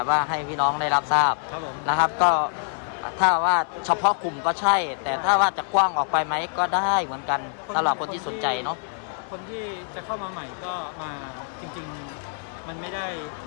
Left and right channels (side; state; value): right; silent; 62 dB below the other